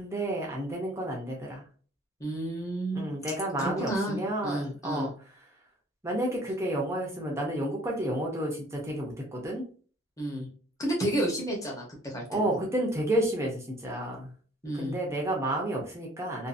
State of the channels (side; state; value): both; normal; correlation 0.55